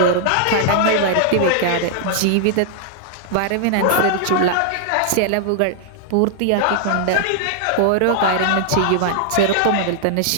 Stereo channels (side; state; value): both; different; correlation -0.01